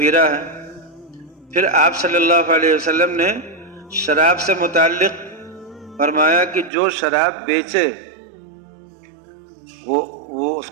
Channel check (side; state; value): left; drops out; at 6.7 s